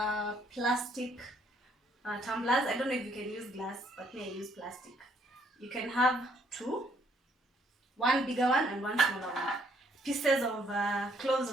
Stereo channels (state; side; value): normal; both; correlation 0.67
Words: plastic tumblers. I don't know if you can use glass, but me I use plastic. You can have two, one bigger one and one smaller one. Pieces of cloves